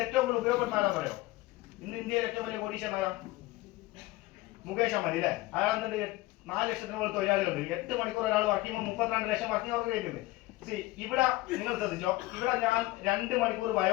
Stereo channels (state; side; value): quieter; right; 19.2 dB